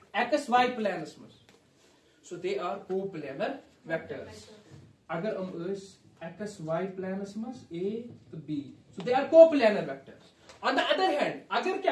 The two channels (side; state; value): both; identical; correlation 1.00